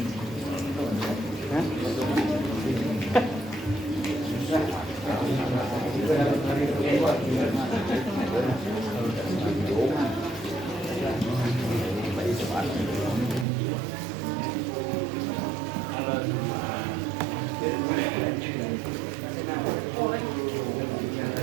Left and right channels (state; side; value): drops out; left; at 13.5 s